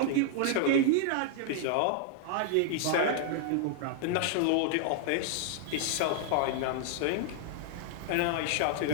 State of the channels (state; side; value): different; both; correlation -0.01